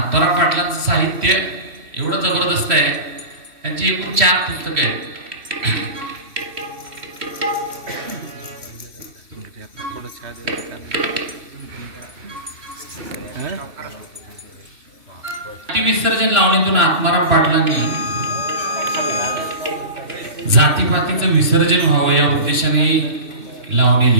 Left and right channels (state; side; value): late; left; 2.9 ms